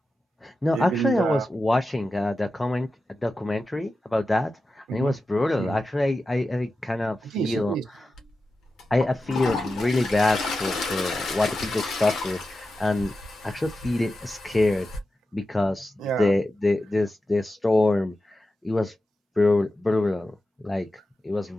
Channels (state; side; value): normal; both; correlation 0.92